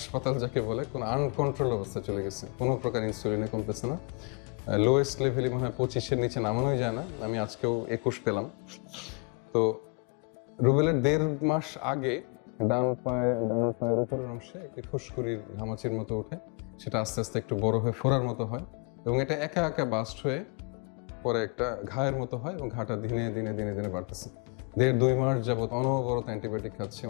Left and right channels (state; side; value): quieter; right; 34.5 dB